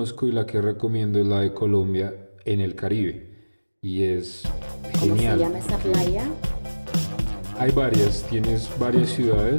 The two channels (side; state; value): both; inverted; correlation -1.00